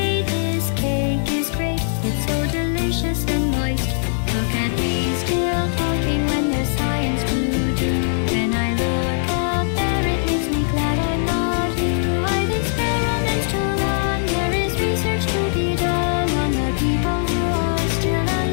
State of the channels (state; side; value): silent; right; digital silence